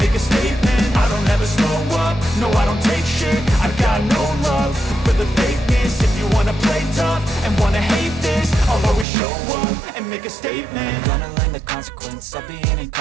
make a statement. I don't ever slow up, no I don't take shit. I got no love for the fakeness. If you wanna play tough and wanna hate this, I'll always show up and make a statement. Gonna learn the consequence of being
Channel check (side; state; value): left; drops out; at 9.1 s